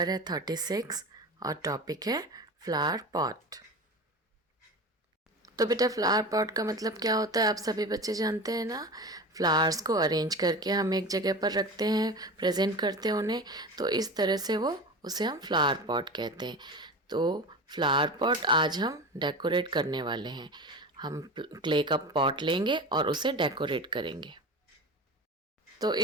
है 36 और टॉपिक है फ्लावर पॉट। तो बेटा फ्लावर पॉट का मतलब क्या होता है आप सभी बच्चे जानते हैं ना। फ्लावर्स को अरेंज करके हम एक जगह पर रखते हैं, प्रेजेंट करते हैं उन्हें, तो इस तरह से उसे हम फ्लावर पॉट कहते हैं। तो फ्लावर पॉट आज हम डेकोरेट करने वाले हैं। हम क्ले का पॉट लेंगे और उसे डेकोरेट करेंगे। तो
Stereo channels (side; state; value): both; normal; correlation 0.30